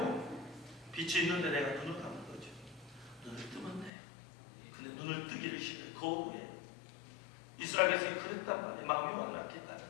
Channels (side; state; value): right; drops out; at 3.9 s